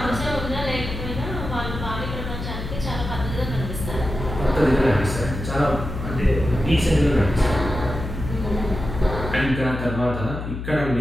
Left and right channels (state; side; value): noise; left; hum, 6 dB below the sound